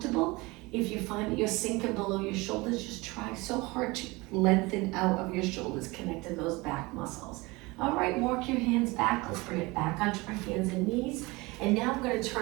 If you find that you're sinking below your shoulders, just try so hard to lengthen out of your shoulders, connecting those back muscles. All right, walk your hands back. Let's bring it back onto our hands and knees. And now I'm going to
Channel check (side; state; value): left; quieter; 23.6 dB